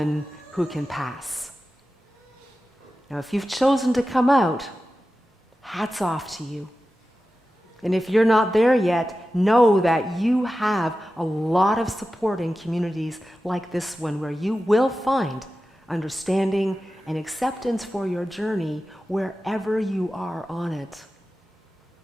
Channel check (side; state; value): both; normal; correlation 0.93